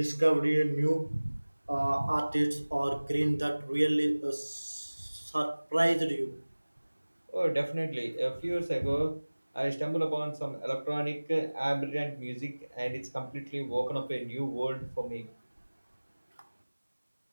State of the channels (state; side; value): inverted; both; correlation -1.00